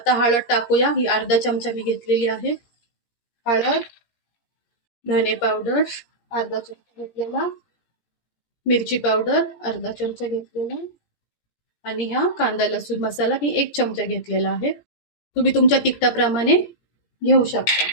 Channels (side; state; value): right; late; 17 ms